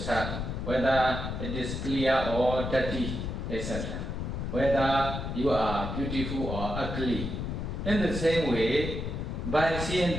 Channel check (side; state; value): left; noise; rumble, 4 dB below the sound